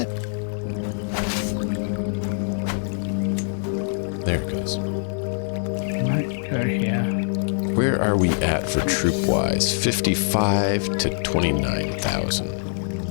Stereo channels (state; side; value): silent; right; digital silence